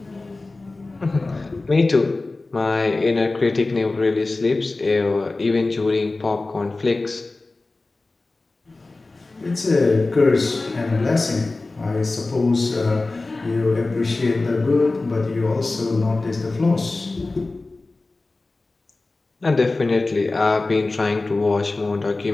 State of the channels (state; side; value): quieter; right; 3.3 dB